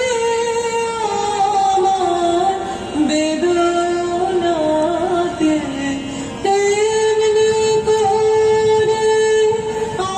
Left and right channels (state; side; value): identical; both; correlation 1.00